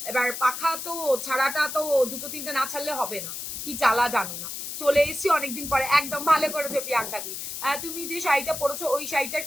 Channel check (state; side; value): noise; left; hiss, 7 dB below the sound